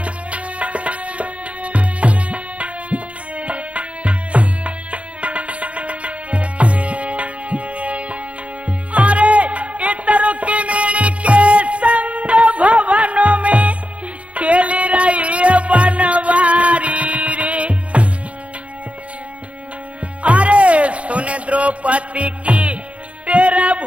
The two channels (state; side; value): late; left; 0.063 ms